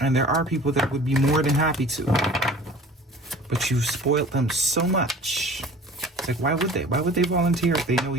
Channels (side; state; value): both; normal; correlation 0.45